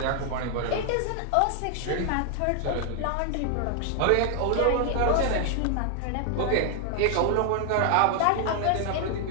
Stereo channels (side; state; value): both; different; correlation 0.00